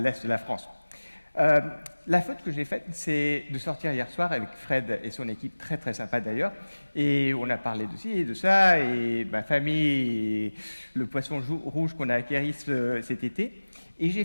de la France. La faute que j'ai faite, c'est de sortir hier soir avec Fred et son équipe, très très sympa d'ailleurs, et on a parlé de ci et de ça, et ma famille, et le poisson rouge qu'on a acquis cet été, et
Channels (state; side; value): inverted; both; correlation -1.00